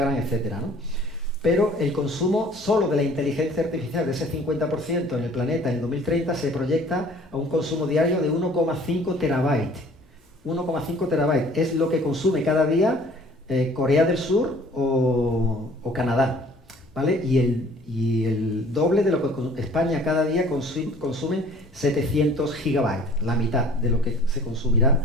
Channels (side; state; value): both; normal; correlation 0.52